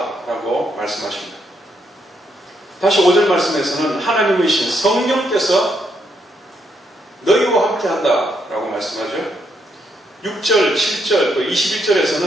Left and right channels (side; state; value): both; normal; correlation 0.76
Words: 라고 말씀하십니다. 다시 5절 말씀에서는 하나님의 신 성령께서 너희와 함께 한다 라고 말씀하죠. 6절, 7절, 또